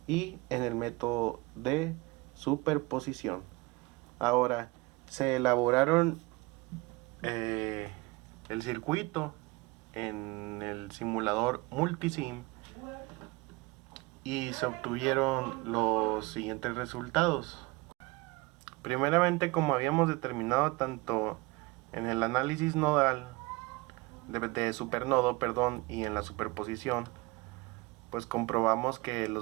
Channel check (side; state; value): left; quieter; 23.8 dB